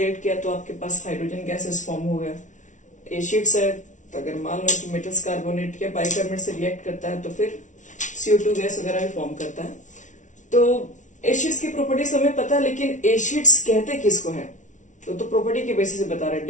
किया तो आपके पास हाइड्रोजन गैसेस फॉर्म हो गया। एसिड्स है तो अगर मान लो कि मेटल्स कार्बोनेट या बाइकार्बोनेट से रिएक्ट करता है तो फिर CO2 गैस वगैरह भी फॉर्म करता है। तो एसिड्स की प्रॉपर्टीज हमें पता है, लेकिन एसिड्स कहते किसको है तो प्रॉपर्टी के बेसिस से बता रहे हैं।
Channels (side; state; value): right; late; 0.37 ms